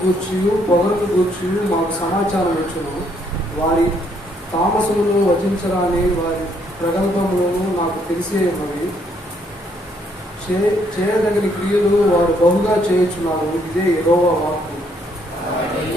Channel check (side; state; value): both; normal; correlation 0.69